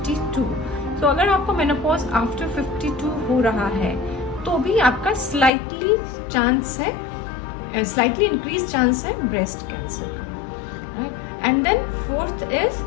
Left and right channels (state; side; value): drops out; right; at 5.5 s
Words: तो अगर आपको मेनोपॉज आफ्टर 52 हो रहा है तो भी आपका स्लाइटली इंक्रीज चांस है ब्रेस्ट कैंसर का। And then fourth is